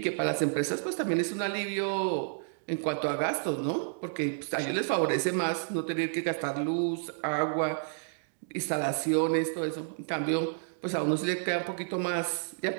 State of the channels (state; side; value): silent; left; digital silence